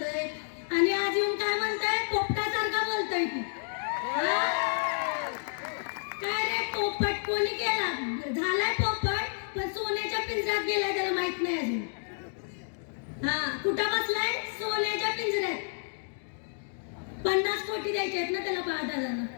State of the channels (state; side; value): silent; right; digital silence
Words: आणि आज येऊन काय म्हणताय? पोपटासारखा बोलतोय की काय रे? पोपट कोणी केला? झालाय पोपट, पण सोन्याच्या पिंजऱ्यात गेलाय त्याला माहित नाही अजून. कुठं बसलाय? सोन्याच्या पिंजऱ्यात. 50 कोटी द्यायचे आहेत ना त्याला दादांना.